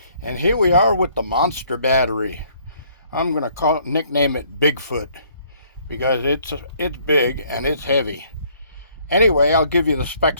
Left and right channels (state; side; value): inverted; both; correlation -0.63